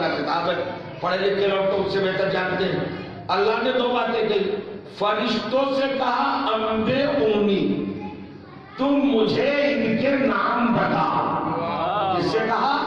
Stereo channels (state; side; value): identical; both; correlation 1.00